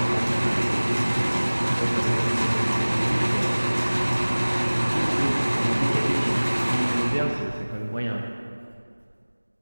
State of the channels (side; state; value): both; inverted; correlation -1.00